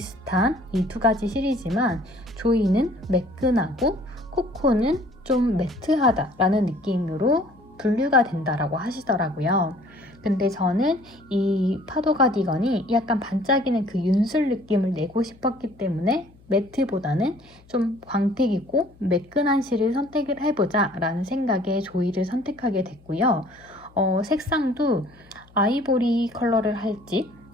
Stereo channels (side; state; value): left; noise; hum, 27 dB below the sound